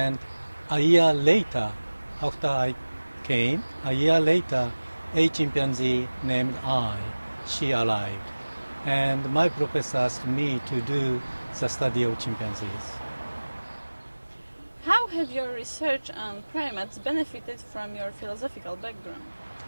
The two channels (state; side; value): inverted; both; correlation -1.00